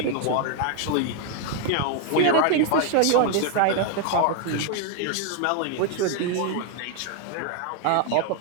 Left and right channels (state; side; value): different; both; correlation 0.01